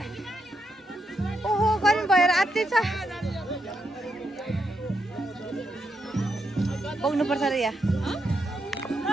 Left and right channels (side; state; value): both; normal; correlation 0.81